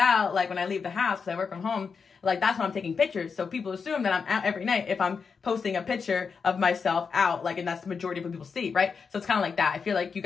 like, when I leave the house, because I work from home, like, that's when I'm taking pictures. So people assume that I'm out every night if I'm posting a picture of myself out, like, and that's the majority of what people see, right? So it's kind of like that. I feel like you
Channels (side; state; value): right; quieter; 5.6 dB